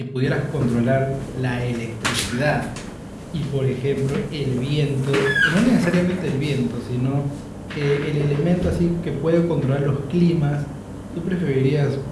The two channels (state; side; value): identical; both; correlation 1.00